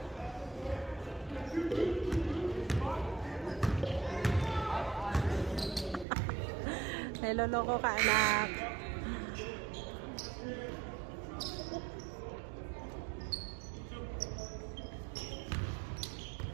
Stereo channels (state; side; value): drops out; left; at 6.1 s